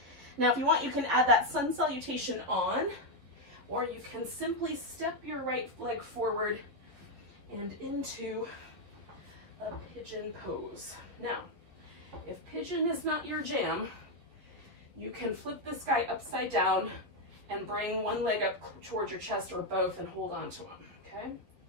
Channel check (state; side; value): late; left; 11 ms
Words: Now, if you want, you can add that sun salutation on, or you can simply step your right leg forward and into a pigeon pose. Now, if pigeon is not your jam, you can flip this guy upside down and bring one leg up towards your chest or both and hold on to him, okay?